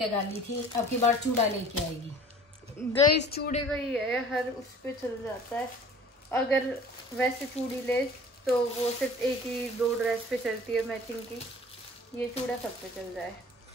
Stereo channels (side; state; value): both; normal; correlation 0.46